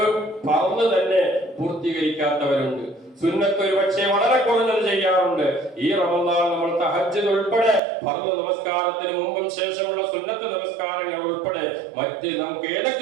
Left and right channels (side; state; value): left; drops out; at 7.8 s